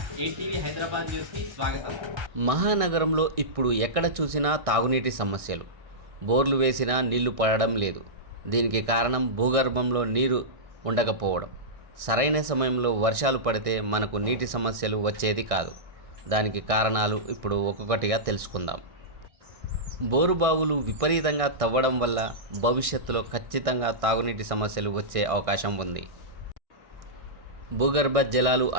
ఏటీవీ హైదరాబాద్ న్యూస్కి స్వాగతం. మహానగరంలో ఇప్పుడు ఎక్కడ చూసినా తాగునీటి సమస్యలు. బోర్లు వేసినా నీళ్లు పడడం లేదు. దీనికి కారణం భూగర్భంలో నీరు ఉండకపోవడం. సరైన సమయంలో వర్షాలు పడితే మనకు నీటి సమస్యలు వచ్చేది కాదు. దానికి కారణాలు ఇప్పుడు ఒక్కొక్కటిగా తెలుసుకుందాం. బోరుబావులు విపరీతంగా తవ్వడం వల్ల భవిష్యత్తులో ఖచ్చితంగా తాగునీటి సమస్యలు వచ్చే అవకాశం ఉంది. భూగర్భ జలాలు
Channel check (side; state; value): left; late; 1.6 ms